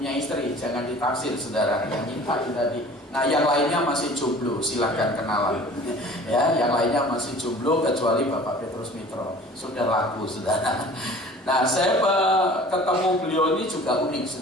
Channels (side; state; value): both; normal; correlation 0.45